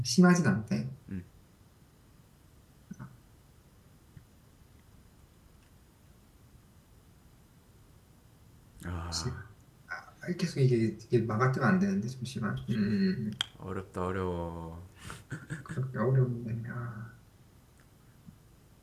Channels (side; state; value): both; identical; correlation 1.00